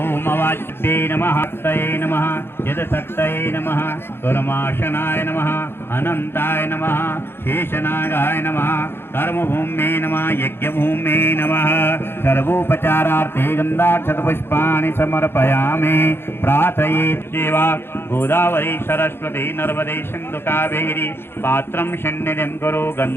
अवाच्ये नमः शक्तये नमः यदशक्तये नमः कर्माशनाय नमः अनन्ताय नमः शेषनागाय नमः कर्मभूम्ये नमः यज्ञभूम्ये नमः सर्वोपचारार्थे गन्धाक्षतपुष्पाणि समर्पयामि प्रार्थयेत् देवा गोदावरी सरस्वती नर्मदे सिन्धु कावेरी पात्रं सन्निधिं कुरु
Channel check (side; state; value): right; late; 0.11 ms